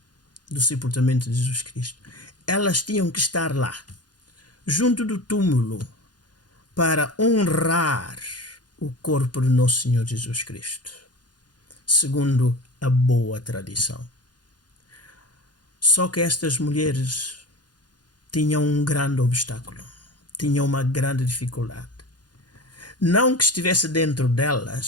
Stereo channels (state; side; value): late; right; 0.70 ms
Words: do sepultamento de Jesus Cristo, elas tinham que estar lá, junto do túmulo, para honrar o corpo de Nosso Senhor Jesus Cristo, segundo a boa tradição. Só que estas mulheres tinham um grande obstáculo, tinham uma grande dificuldade. Não que estivesse dentro